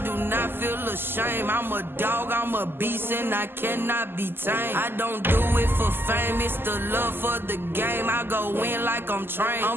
do not feel ashamed. I'm a dog, I'm a beast, and I cannot be tamed. I don't do it for fame, it's the love for the game. I go in like I'm trained.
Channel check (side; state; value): left; late; 0.10 ms